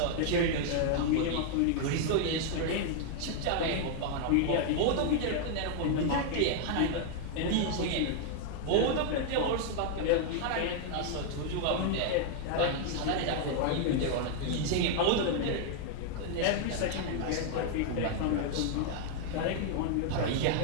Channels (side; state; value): both; different; correlation 0.00